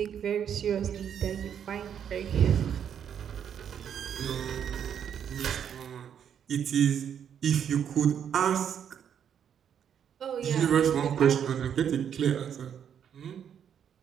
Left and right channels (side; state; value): left; quieter; 8.6 dB